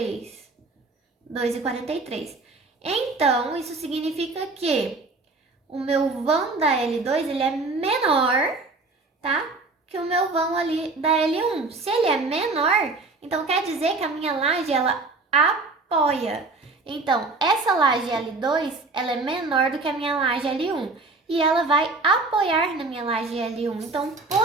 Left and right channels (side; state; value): left; quieter; 3.5 dB